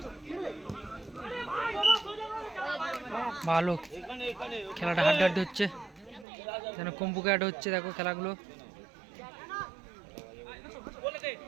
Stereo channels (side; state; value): left; drops out; at 6.2 s